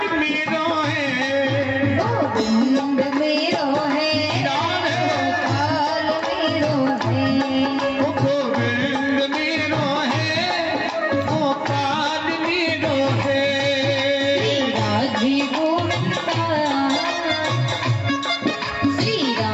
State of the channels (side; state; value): both; identical; correlation 1.00